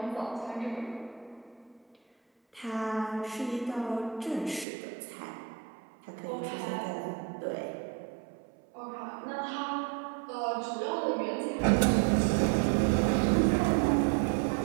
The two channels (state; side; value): drops out; left; at 4.7 s